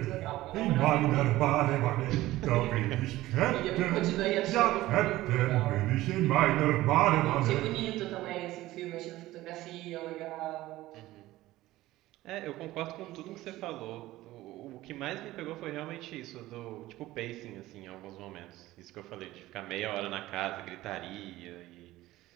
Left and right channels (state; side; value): quieter; left; 16.7 dB